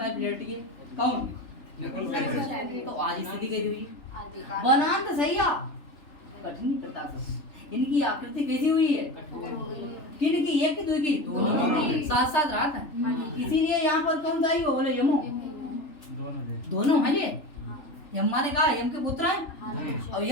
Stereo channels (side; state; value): right; late; 3.4 ms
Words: लेटिए। कौन तो आज स्थिति कैसी हुई वनांत सैया कठिनी कृता सब। इनकी आकृति कैसी हुई है किनकी, एक की दो की दोनों साथ साथ रात है। इसीलिए यहाँ पर कौन सा हो बोले यमो, दोनों है ये। यम माने कहा यम के पुत्र हैं और